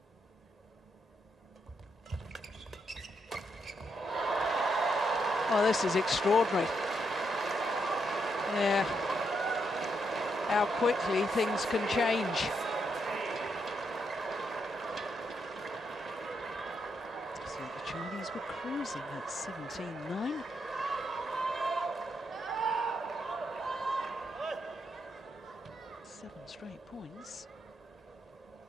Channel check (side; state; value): both; normal; correlation 0.79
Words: Oh, this is extraordinary. Yeah. How quickly things can change. So the Chinese were cruising at 17-9. Straight points.